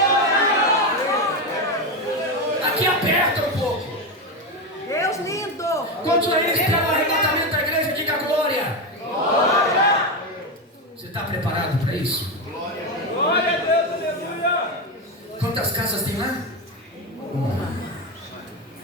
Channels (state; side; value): normal; both; correlation 0.13